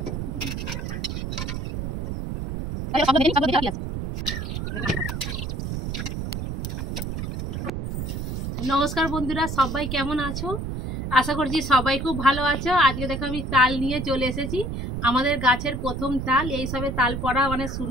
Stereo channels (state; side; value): noise; right; rumble, 4 dB below the sound